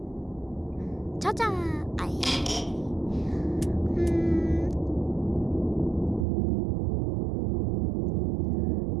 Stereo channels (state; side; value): drops out; left; at 6.2 s